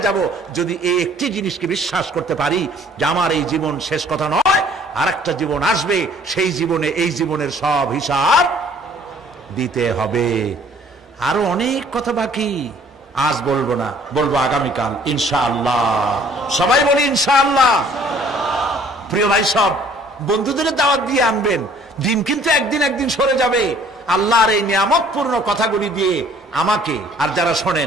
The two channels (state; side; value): normal; both; correlation 0.57